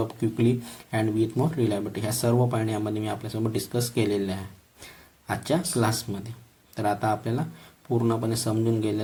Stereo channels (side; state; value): both; identical; correlation 1.00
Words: quickly and with more reliability. ह्या सर्व point यामध्ये मी आपल्यासोबत discuss केलेले आहे आजच्या क्लासमध्ये. तर आता आपल्याला पूर्णपणे समजून